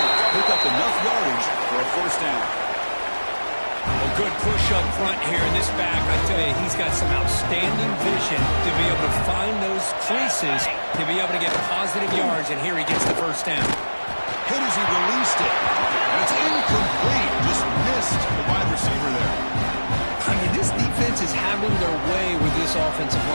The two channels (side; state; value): both; inverted; correlation -1.00